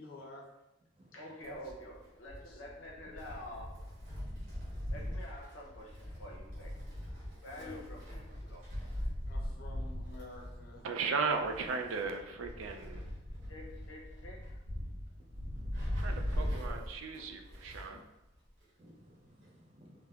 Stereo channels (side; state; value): both; normal; correlation 0.54